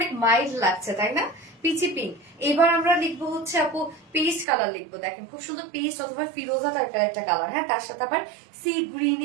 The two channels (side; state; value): left; drops out; at 4.5 s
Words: মাইল্ড লাগছে তাই না, পিচি পিঙ্ক। এবার আমরা লিখবো হচ্ছে আপু পেস্ট কালার লিখবো, দেখেন খুব সুন্দর পেস্ট অথবা ফিরোজা টাইপের একটা কালার। হ্যাঁ, তার সাথে আবার সি